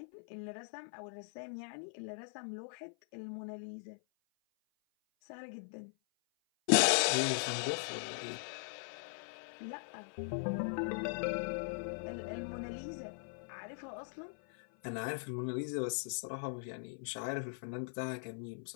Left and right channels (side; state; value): right; silent; 51 dB below the other